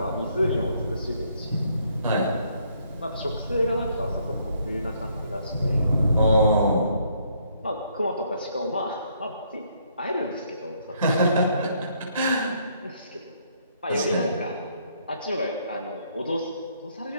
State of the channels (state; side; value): inverted; both; correlation -0.69